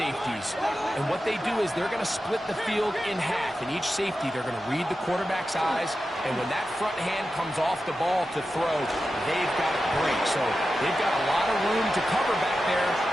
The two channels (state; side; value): normal; both; correlation 0.92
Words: And what they do is they're going to split the field in half. In each safety, they're going to read the quarterback's eyes. And when that front hand comes off the ball to throw, they've got to break. So they've got a lot of room to cover back there.